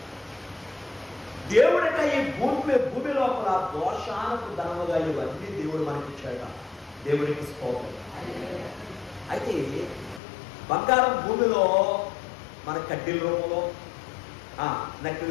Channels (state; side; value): drops out; right; at 10.2 s